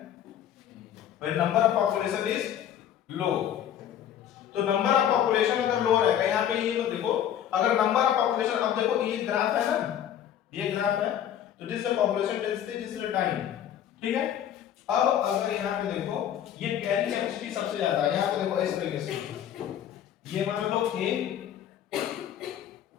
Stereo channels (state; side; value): quieter; right; 10.2 dB